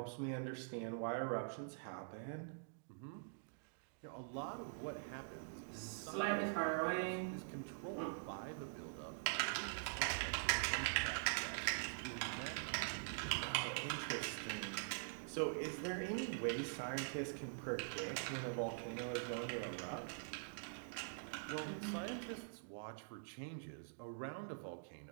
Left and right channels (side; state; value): left; silent; digital silence